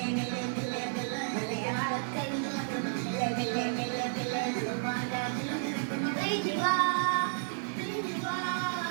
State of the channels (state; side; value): silent; left; digital silence